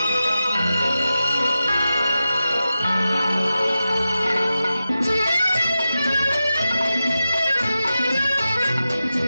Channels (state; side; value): inverted; both; correlation -0.92